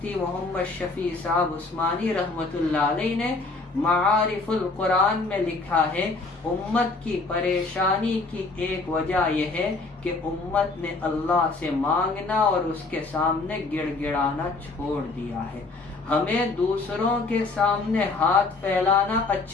محمد شفیع صاحب عثمانی رحمت اللہ علیہ نے معارف القرآن میں لکھا ہے، امت کی پریشانی کی ایک وجہ یہ ہے کہ امت نے اللہ سے مانگنا اور اس کے سامنے گڑ گڑانا چھوڑ دیا ہے۔ ہمیں دوسروں کے سامنے ہاتھ پھیلانا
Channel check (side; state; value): right; quieter; 3.6 dB